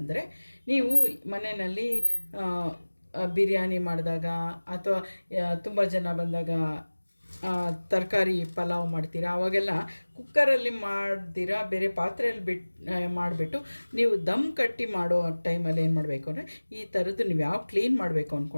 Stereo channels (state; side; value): inverted; both; correlation -1.00